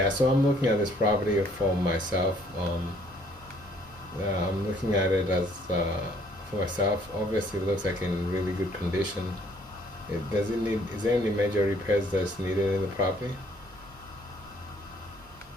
So I'm looking at this property for myself. I'm looking at it as for myself. Obviously, it looks like in really good condition. Does it need? Is there any major repairs that's needed in the property?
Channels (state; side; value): normal; both; correlation 0.63